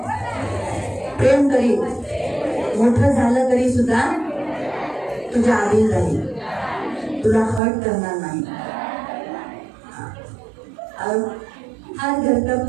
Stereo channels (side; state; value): left; drops out; at 7.6 s